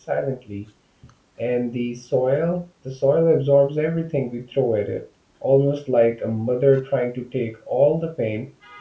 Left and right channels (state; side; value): identical; both; correlation 1.00